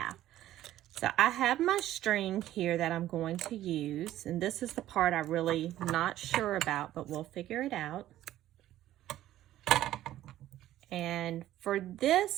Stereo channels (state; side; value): quieter; left; 13.6 dB